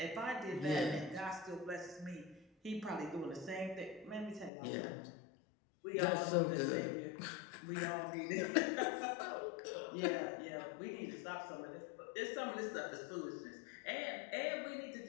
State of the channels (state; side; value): drops out; right; at 4.5 s